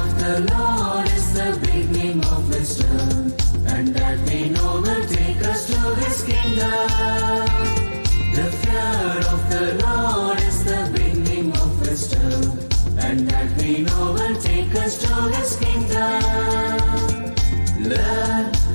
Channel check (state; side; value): inverted; both; correlation -1.00